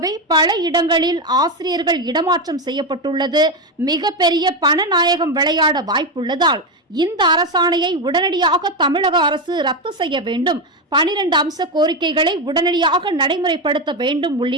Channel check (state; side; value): normal; both; correlation 0.11